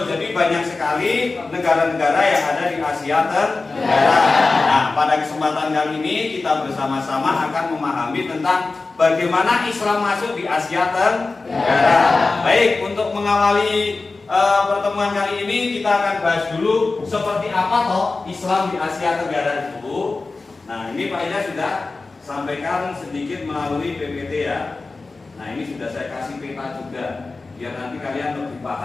Jadi banyak sekali negara-negara yang ada di Asia Tenggara. Nah, pada kesempatan kali ini kita bersama-sama akan memahami tentang bagaimana Islam masuk di Asia Tenggara. Baik, untuk mengawali pertemuan kali ini kita akan bahas dulu seperti apa toh Islam di Asia Tenggara itu. Nah, ini Pak Ida sudah sampaikan sedikit melalui PPT ya. Nah, ini sudah saya kasih peta juga biar nanti kalian lebih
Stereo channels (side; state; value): right; quieter; 3.7 dB